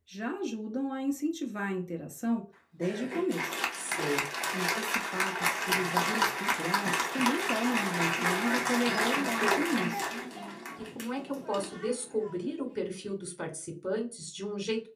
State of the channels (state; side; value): identical; both; correlation 1.00